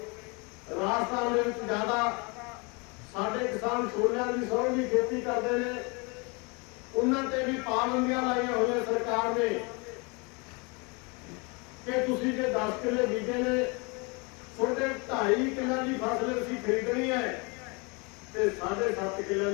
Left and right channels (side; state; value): right; quieter; 30.2 dB